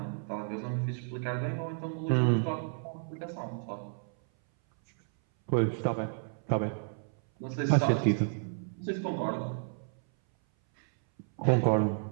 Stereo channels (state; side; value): silent; left; 57 dB below the other